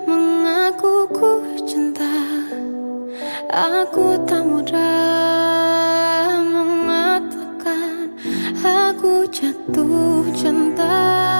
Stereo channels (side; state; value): both; inverted; correlation -1.00